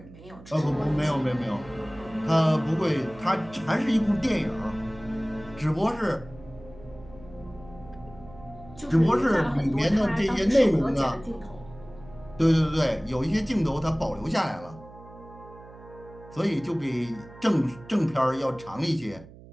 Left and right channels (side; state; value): right; noise; hum, 19 dB below the sound